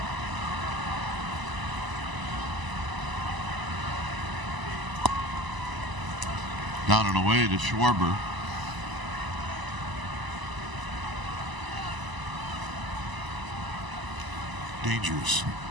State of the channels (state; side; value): late; left; 1.0 ms